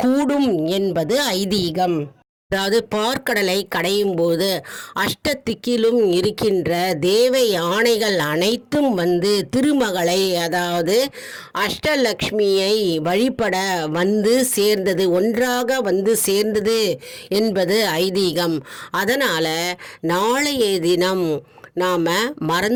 கூடும் என்பது ஐதீகம். அதாவது பார்க்கடலை கடையும் போது அஷ்டதிக்கிலும் இருக்கின்ற தேவ யானைகள் அனைத்தும் திருமகளை அதாவது அஷ்டலக்ஷ்மியை வழிபட சேர்ந்தது, ஒன்றாக சேர்ந்தது என்பது ஐதீகம். அதனால் நாளைய தினம் நாம்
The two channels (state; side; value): identical; both; correlation 1.00